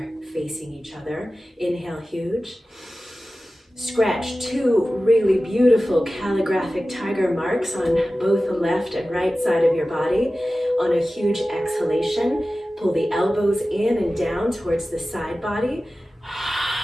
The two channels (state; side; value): normal; both; correlation 0.95